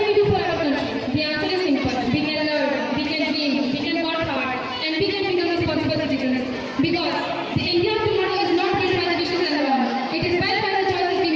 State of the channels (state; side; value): identical; both; correlation 1.00